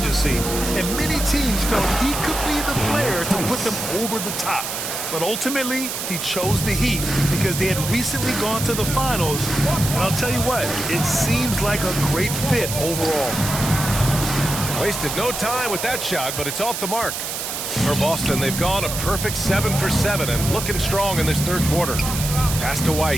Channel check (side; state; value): right; noise; hiss, 5 dB below the sound